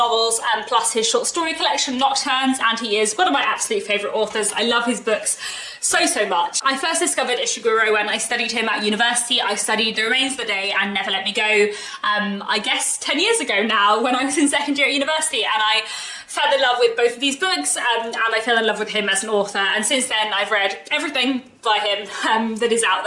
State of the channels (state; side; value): identical; both; correlation 1.00